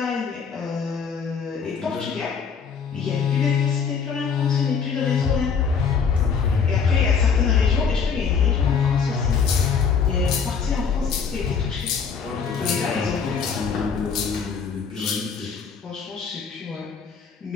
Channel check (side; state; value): right; quieter; 6.1 dB